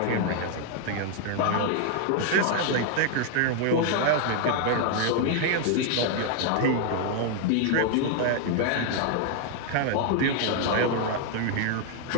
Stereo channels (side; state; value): both; different; correlation 0.00